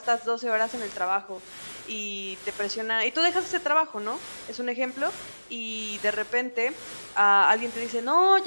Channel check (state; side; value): inverted; both; correlation -1.00